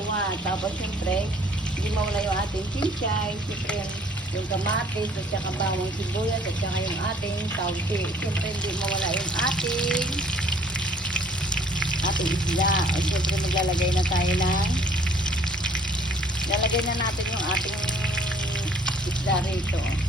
Tapos siyempre, hindi mawala yung ating chinchay. Siyempre, yung kamatis at saka bawang sibuyas at saka yung ating tausi. Siyempre, hindi mawala yung ating isda. O siyempre, maglalagay na tayo ng lalagay na natin yung ating isda rito.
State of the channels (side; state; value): both; normal; correlation 0.58